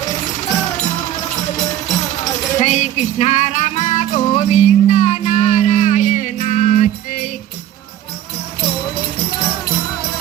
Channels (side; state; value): left; quieter; 12.0 dB